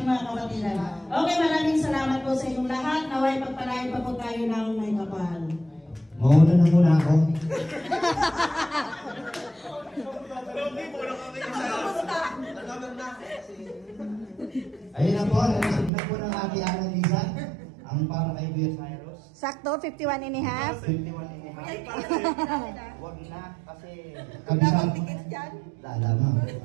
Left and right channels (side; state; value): left; drops out; at 15.9 s